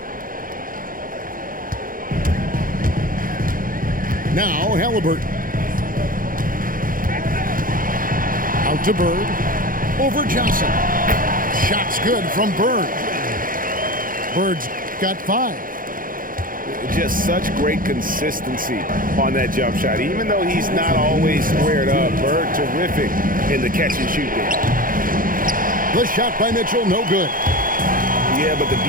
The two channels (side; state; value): left; late; 0.40 ms